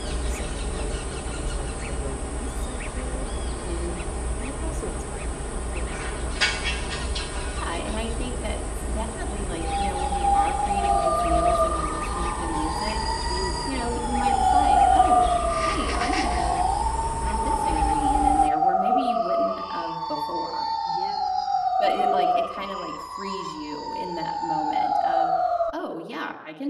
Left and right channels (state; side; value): identical; both; correlation 1.00